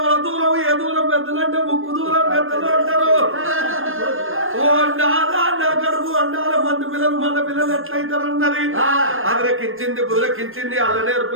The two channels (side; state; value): left; late; 0.60 ms